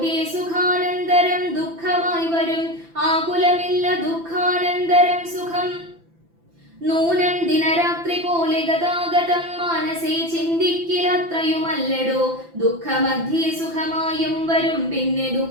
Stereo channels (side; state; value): left; late; 5.9 ms